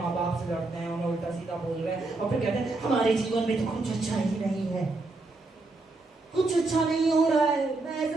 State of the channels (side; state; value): left; quieter; 3.3 dB